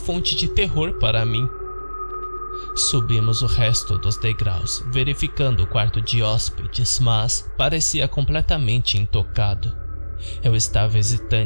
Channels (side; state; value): both; inverted; correlation -1.00